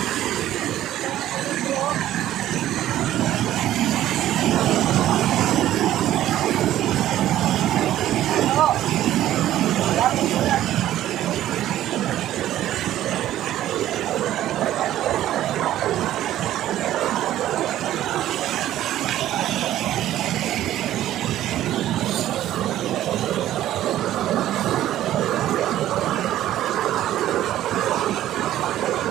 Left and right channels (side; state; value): left; quieter; 13.0 dB